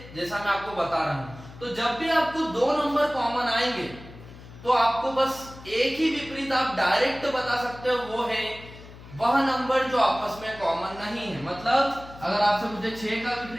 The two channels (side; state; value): left; noise; hum, 18 dB below the sound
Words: जैसा मैं आपको बता रहा हूं। तो जब भी आपको दो नंबर कॉमन आएंगे तो आपको बस एक ही विपरीत आप डायरेक्ट बता सकते हो, वो है वह नंबर जो आपस में कॉमन नहीं है। मतलब अगर आपसे पूछे 6 का